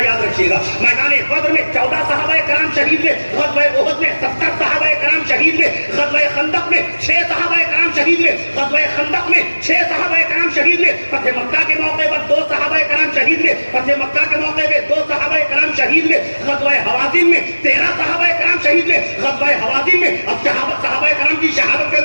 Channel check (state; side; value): inverted; both; correlation -1.00